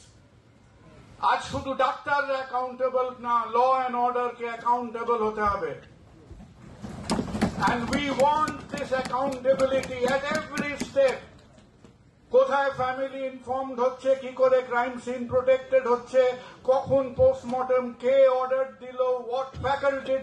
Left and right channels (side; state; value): both; identical; correlation 1.00